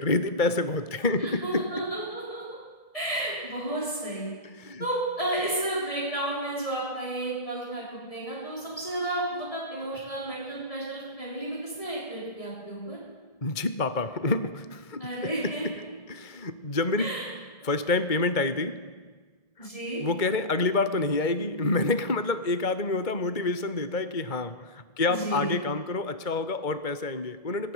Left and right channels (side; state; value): right; late; 1.7 ms